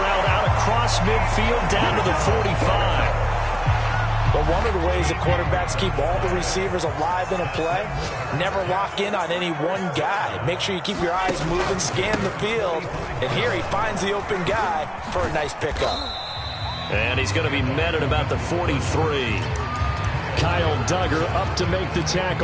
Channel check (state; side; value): identical; both; correlation 1.00